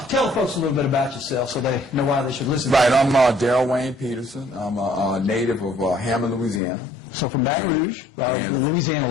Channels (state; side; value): drops out; right; at 6.6 s